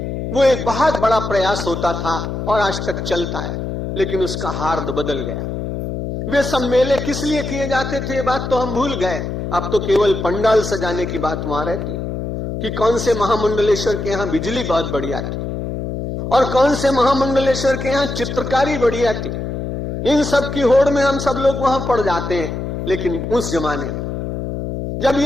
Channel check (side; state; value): left; noise; hum, 4 dB below the sound